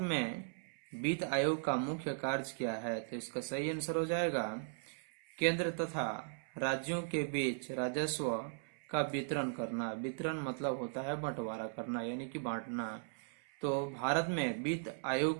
में वित्त आयोग का मुख्य कार्य क्या है? तो इसका सही आंसर हो जाएगा केंद्र तथा राज्यों के बीच राजस्व का वितरण करना। वितरण मतलब होता है बंटवारा करना यानी कि बांटना। तो भारत में वित्त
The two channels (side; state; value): left; silent; 53 dB below the other